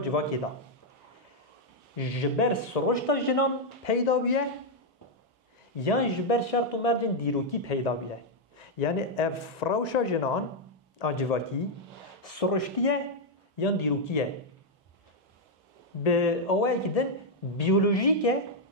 دا جبر سروشتا جنان پیدا بیه یا جبر شرط و مرجن دیروکی پیدا بیه یعنی افراوشا جنان آجواکی سرشتیه یا دیروکیه به اوه که دن بیولوژیکه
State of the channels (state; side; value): normal; both; correlation -0.01